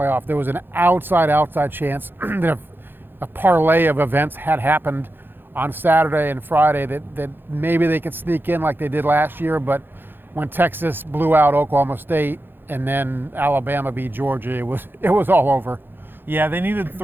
There was an outside chance that if a parlay of events had happened on Saturday and Friday that maybe they could sneak in like they did last year, but when Texas blew out Oklahoma State and then Alabama beat Georgia, it was all over. Yeah, they needed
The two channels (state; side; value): late; left; 0.099 ms